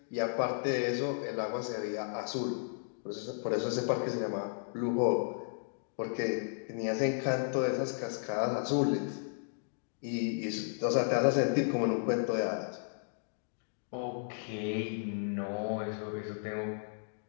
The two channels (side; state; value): right; silent; digital silence